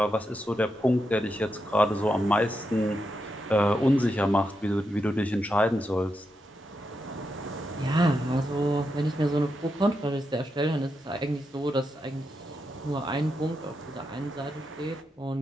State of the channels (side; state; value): both; normal; correlation 0.85